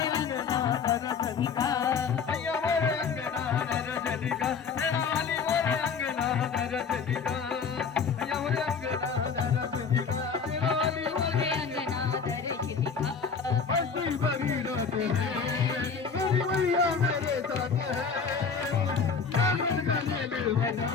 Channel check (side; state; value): right; quieter; 5.8 dB